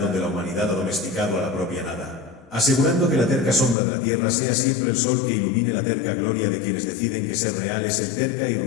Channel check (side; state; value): right; drops out; at 3.8 s